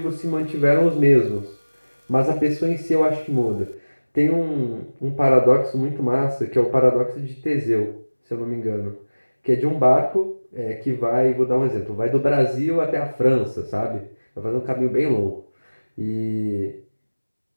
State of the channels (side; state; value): both; inverted; correlation -1.00